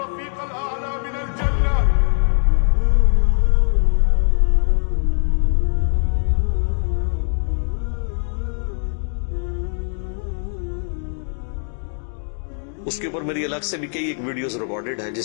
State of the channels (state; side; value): silent; right; 63 dB below the other